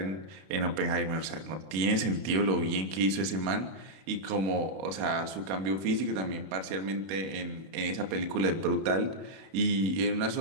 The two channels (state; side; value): late; left; 32 ms